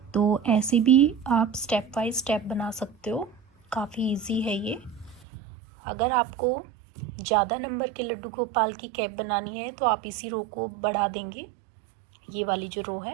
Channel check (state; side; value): drops out; left; at 5.2 s